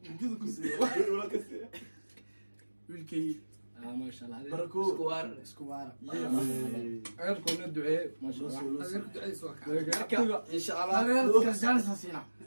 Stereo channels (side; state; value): both; inverted; correlation -1.00